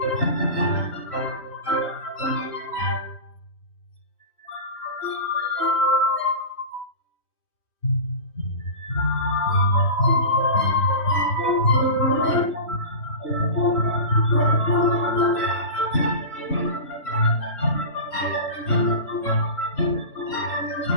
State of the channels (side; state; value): right; late; 3.2 ms